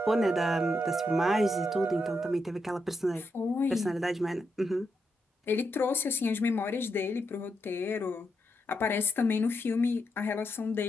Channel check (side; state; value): both; normal; correlation 0.83